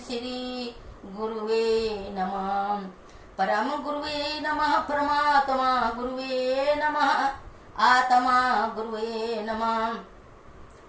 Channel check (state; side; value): identical; both; correlation 1.00